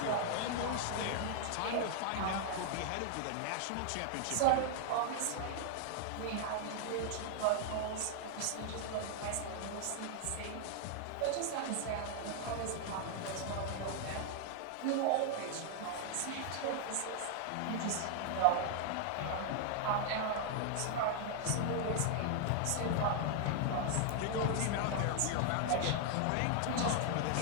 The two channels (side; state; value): both; different; correlation 0.00